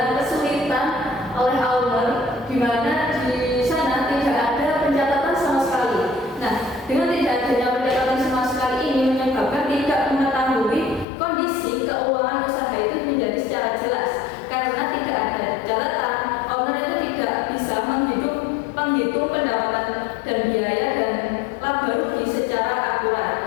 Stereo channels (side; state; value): right; drops out; at 11.1 s